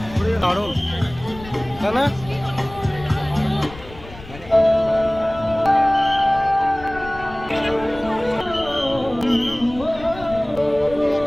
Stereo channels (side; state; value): left; noise; rumble, 16 dB below the sound